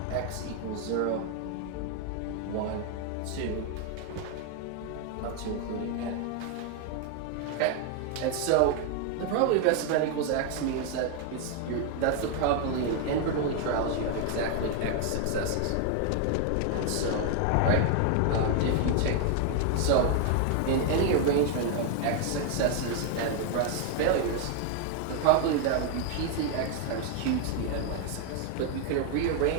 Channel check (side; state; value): both; different; correlation 0.00